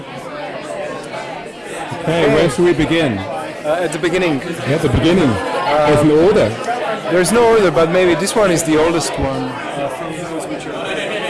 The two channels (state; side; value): identical; both; correlation 1.00